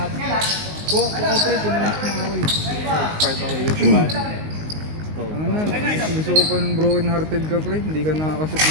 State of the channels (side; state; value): left; late; 19 ms